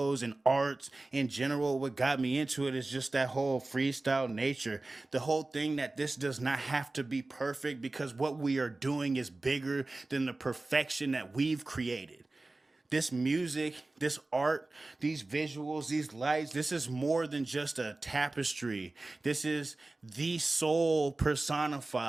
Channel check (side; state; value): left; quieter; 3.0 dB